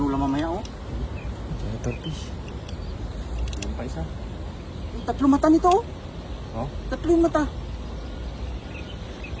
mamaya, oh. Turkish. Meron pa isa. Yung 3 mata nito, oh. Oh. 3 mata.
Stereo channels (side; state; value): both; identical; correlation 1.00